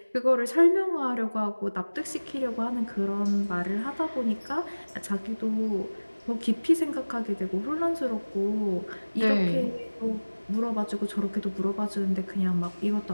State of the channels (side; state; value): both; inverted; correlation -1.00